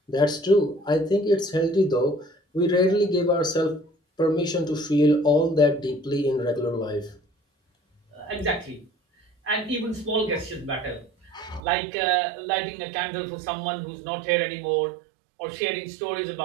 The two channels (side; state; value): left; drops out; at 11.6 s